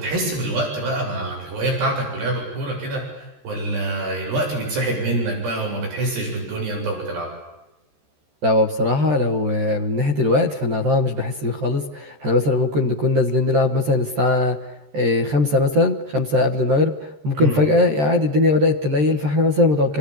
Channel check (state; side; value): late; left; 13 ms